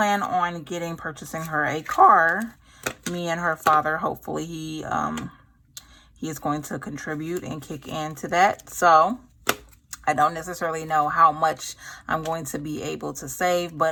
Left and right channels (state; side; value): identical; both; correlation 1.00